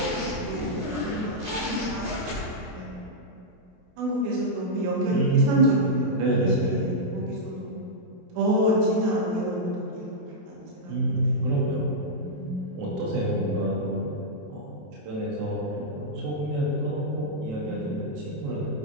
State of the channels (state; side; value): late; left; 27 ms